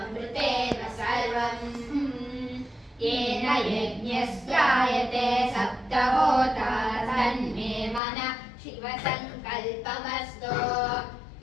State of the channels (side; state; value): right; drops out; at 8.0 s